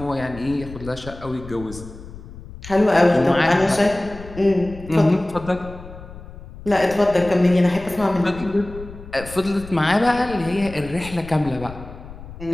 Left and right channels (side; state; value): left; noise; rumble, 15 dB below the sound